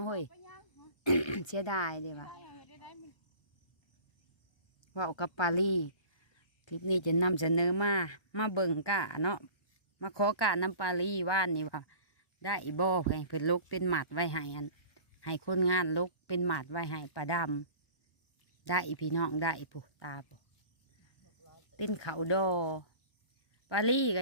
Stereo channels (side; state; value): right; late; 1.1 ms